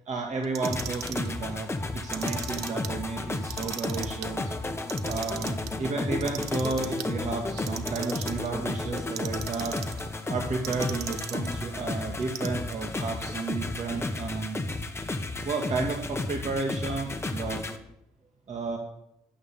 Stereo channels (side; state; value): both; normal; correlation 0.67